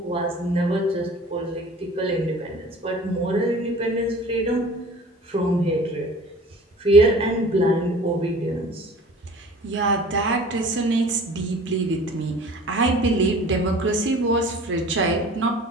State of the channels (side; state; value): both; normal; correlation 0.45